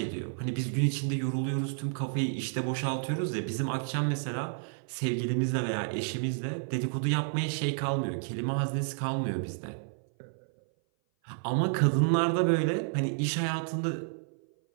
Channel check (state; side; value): silent; left; 57 dB below the other